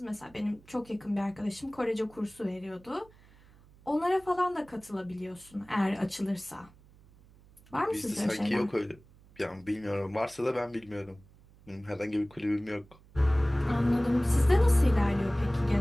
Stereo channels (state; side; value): noise; right; hum, 26 dB below the sound